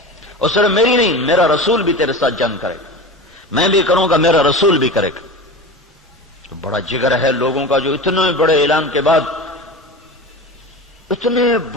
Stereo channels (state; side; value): normal; both; correlation 0.30